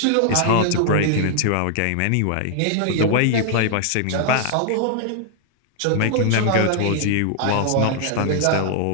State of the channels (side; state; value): both; different; correlation 0.00